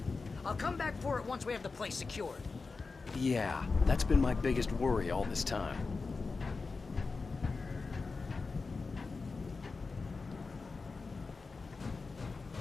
I'll come back for it once we have the place secured. Yeah, that's been my biggest worry all this time.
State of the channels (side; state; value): right; quieter; 4.2 dB